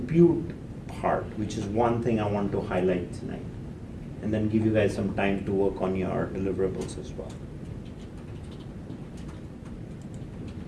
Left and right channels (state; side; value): identical; both; correlation 1.00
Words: part, which is one thing I want to highlight tonight, and then give you guys some time to work on your deliverables as well.